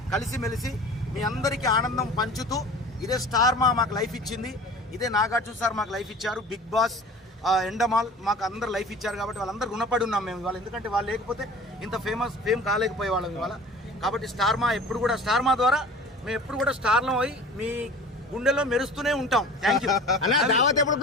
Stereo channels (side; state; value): both; normal; correlation 0.41